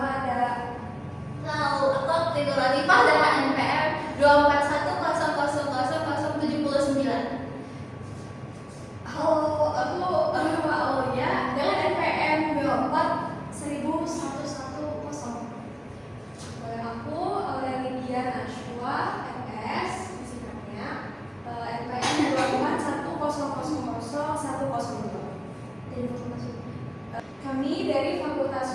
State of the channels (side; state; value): both; identical; correlation 1.00